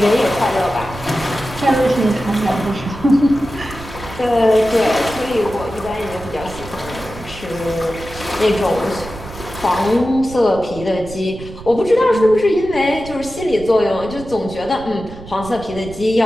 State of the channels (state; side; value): noise; right; rumble, 15 dB below the sound